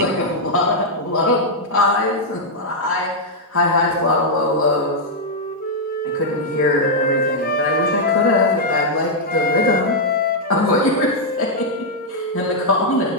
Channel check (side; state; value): both; normal; correlation -0.04